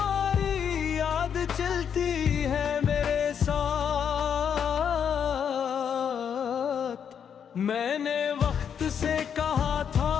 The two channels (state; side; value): quieter; right; 7.8 dB